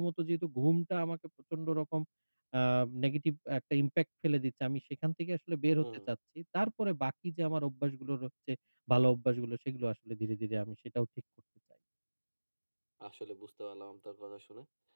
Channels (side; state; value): both; inverted; correlation -1.00